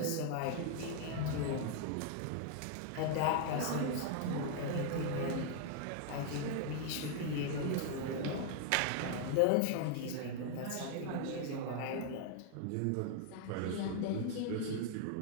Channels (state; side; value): different; both; correlation 0.00